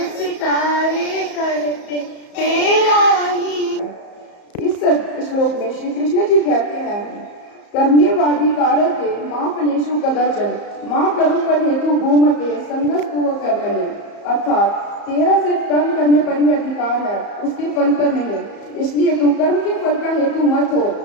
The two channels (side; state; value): right; late; 34 ms